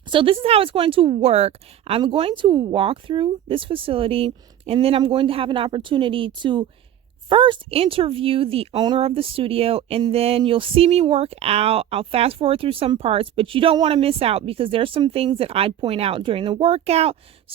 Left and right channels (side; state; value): left; quieter; 11.1 dB